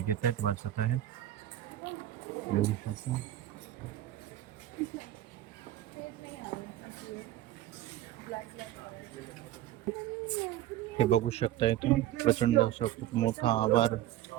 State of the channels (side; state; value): left; quieter; 13.1 dB